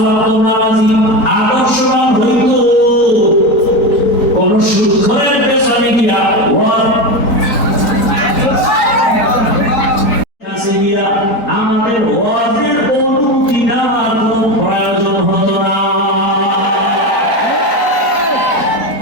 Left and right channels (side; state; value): right; late; 4.4 ms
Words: ওয়াক্ত নামাজি আদর্শবান হইত, কোন সুদখোরের পেছনে গিয়া আমাদের ওয়াজের অনুমতি নেওয়ার কোনো প্রয়োজন হতো না।